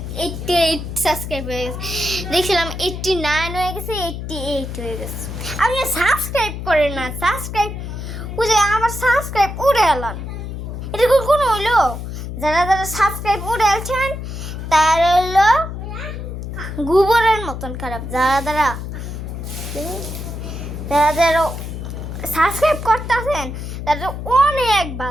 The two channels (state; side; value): noise; left; hum, 7 dB below the sound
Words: সাবস্ক্রাইব হয়ে গেছে, দেখছিলাম 89 হয়ে গেছে, 88 হয়ে গেছে। আপনি সাবস্ক্রাইব করেন না, সাবস্ক্রাইব বুঝে আমার সাবস্ক্রাইব উড়ে এলাম, এটা কোনো হইলো? যারা যারা সাবস্ক্রাইব উড়ে আলছেন তার হইলো গোবরের মতন খারাপ। যারা যারা যারা যারা সাবস্ক্রাইব করতেছেন তারা অনেক